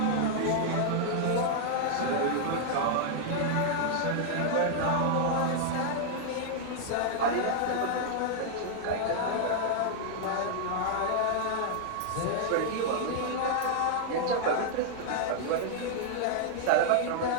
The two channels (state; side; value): different; both; correlation -0.01